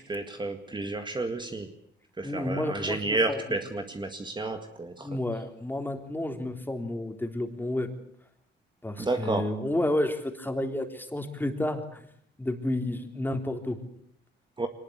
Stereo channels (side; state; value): both; normal; correlation 0.69